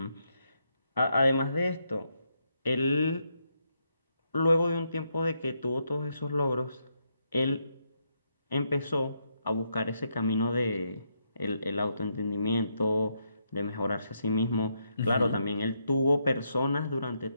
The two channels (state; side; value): inverted; both; correlation -0.79